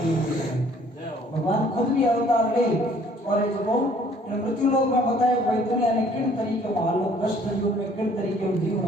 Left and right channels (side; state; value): both; normal; correlation 0.58